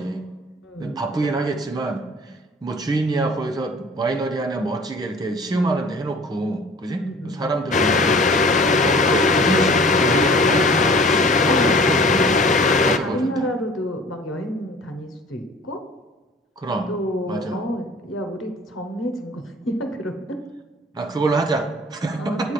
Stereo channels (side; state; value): both; normal; correlation 0.48